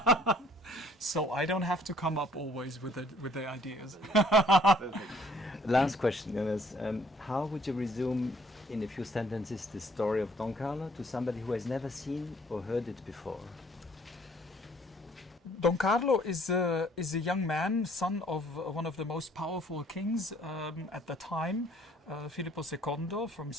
So I don't have to come up always with the ideas. Last question, Jonas. How would you resume in a few sentences the story of Don Carlo to somebody who has never seen or heard it before? Don Carlo is a young man, son of one of the most powerful kings at the time, Filippo II from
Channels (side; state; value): both; normal; correlation 0.60